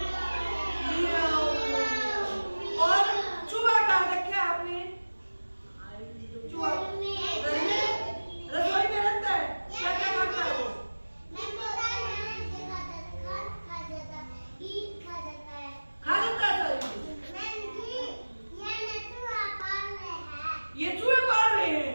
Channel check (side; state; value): both; inverted; correlation -1.00